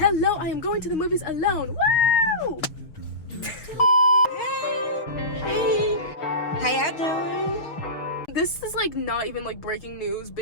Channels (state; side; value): late; right; 6.4 ms